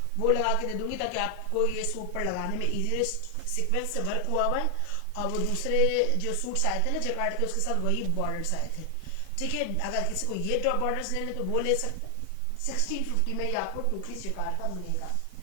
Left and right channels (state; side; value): different; both; correlation 0.00